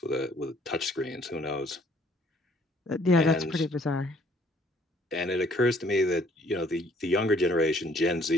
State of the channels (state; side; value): normal; both; correlation 0.61